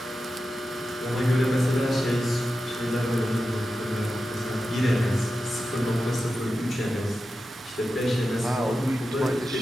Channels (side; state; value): both; normal; correlation 0.91